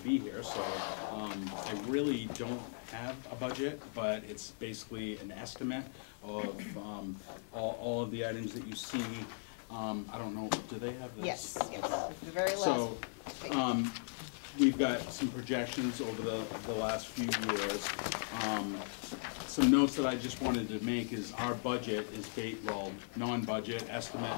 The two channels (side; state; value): right; silent; digital silence